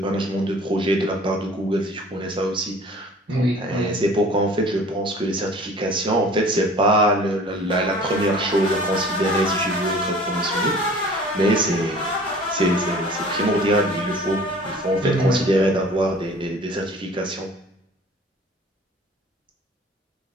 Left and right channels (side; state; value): both; normal; correlation 0.47